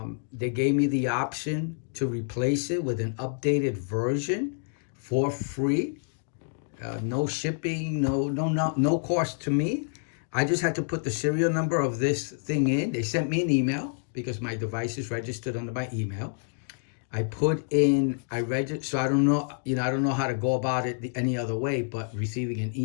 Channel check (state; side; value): silent; right; digital silence